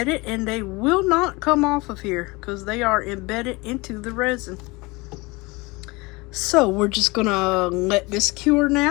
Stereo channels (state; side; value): quieter; right; 24.4 dB